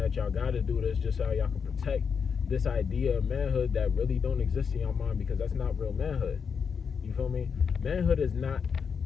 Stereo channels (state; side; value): quieter; right; 6.3 dB